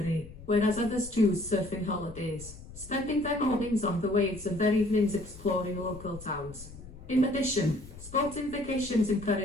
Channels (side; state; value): left; noise; rumble, 16 dB below the sound